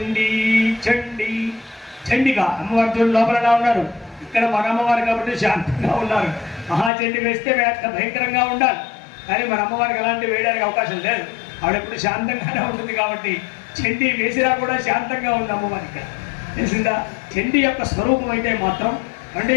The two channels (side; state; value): right; drops out; at 6.9 s